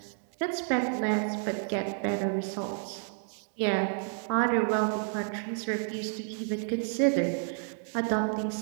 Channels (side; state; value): left; silent; digital silence